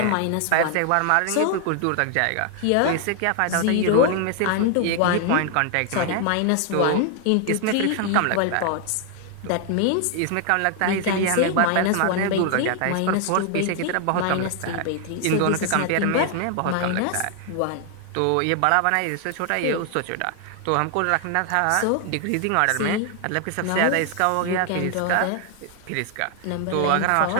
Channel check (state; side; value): different; both; correlation 0.00